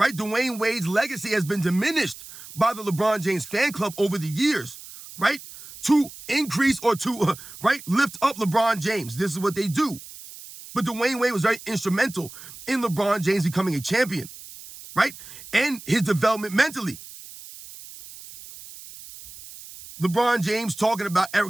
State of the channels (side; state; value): right; noise; hiss, 16 dB below the sound